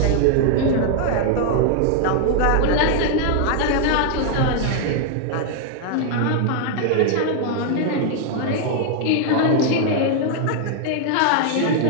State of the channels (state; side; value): different; both; correlation 0.00